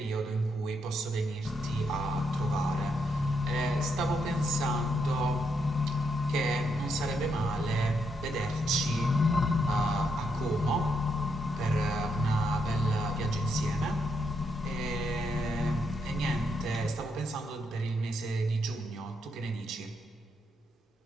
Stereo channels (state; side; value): normal; both; correlation 0.79